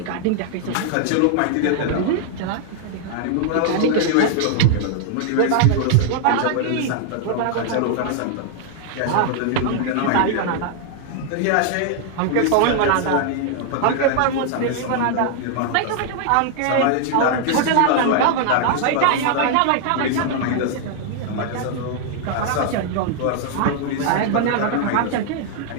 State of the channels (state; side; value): different; both; correlation 0.00